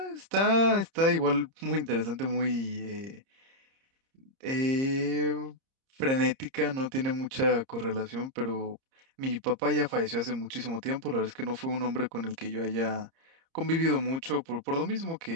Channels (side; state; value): left; late; 30 ms